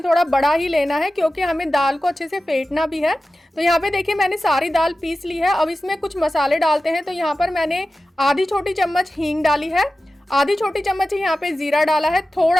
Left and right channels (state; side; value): normal; both; correlation 0.94